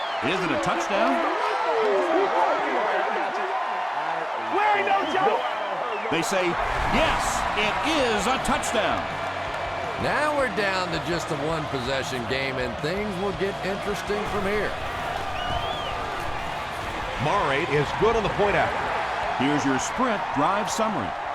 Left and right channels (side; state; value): both; identical; correlation 1.00